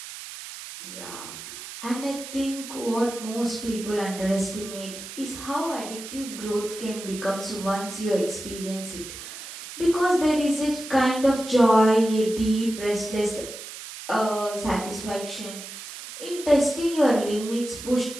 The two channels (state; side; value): noise; right; hiss, 11 dB below the sound